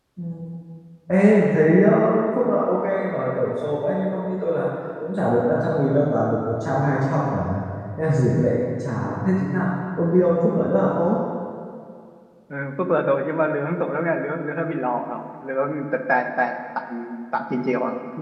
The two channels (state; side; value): identical; both; correlation 1.00